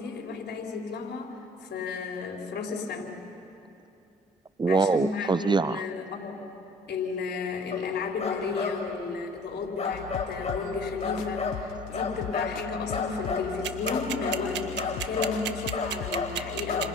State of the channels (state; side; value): normal; both; correlation 0.47